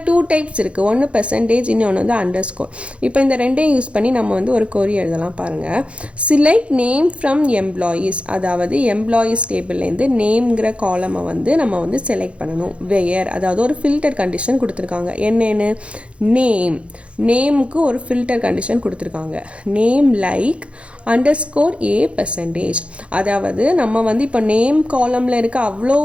2 டைப்ஸ் இருக்குது. ஒன்று பெர்சன்டேஜ், இன்னொன்று வந்து அண்டர்ஸ்கோர். இப்போ இந்த ரெண்டையும் யூஸ் பண்ணி நம்ம வந்து ஒரு கொரி எழுதலாம். பாருங்கள், செலக்ட் நேம் ஃப்ரம் எம்ப்ளாயீஸ், அதாவது எம்ப்ளாயீஸ் டேபிள்லேருந்து நேம்ங்கிற காலமை வந்து நம்ம வந்து செலக்ட் பண்ணணும். வேர், அதாவது ஒரு ஃபில்டர் கண்டிஷன் கொடுத்துருக்காங்க. என்னென்னு? நேமுக்கு ஒரு ஃபில்டர் கண்டிஷன் கொடுத்துருக்காங்க. நேம் லைக் அண்டர்ஸ்கோர் ஏ பெர்சன்டேஜ். அதாவது நம்ம வந்து இப்போ நேம் காலமில் இருக்க அவ்வளோ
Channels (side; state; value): left; late; 0.060 ms